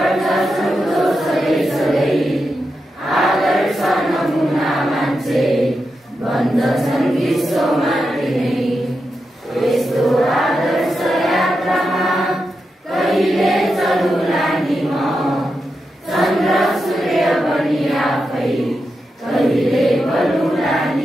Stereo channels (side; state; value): both; normal; correlation 0.88